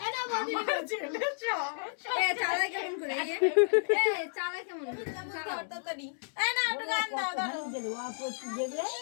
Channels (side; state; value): right; silent; digital silence